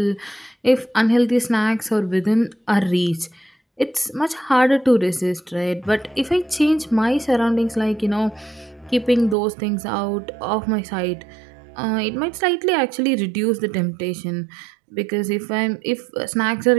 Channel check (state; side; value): drops out; left; at 9.3 s